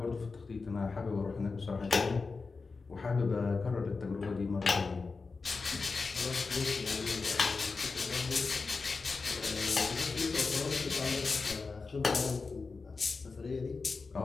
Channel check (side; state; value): right; quieter; 4.3 dB